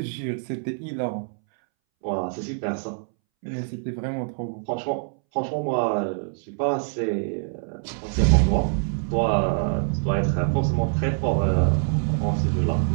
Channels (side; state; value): left; silent; 62 dB below the other